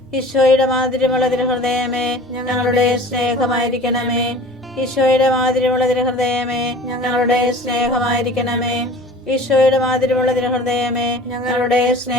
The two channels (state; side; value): normal; both; correlation 0.43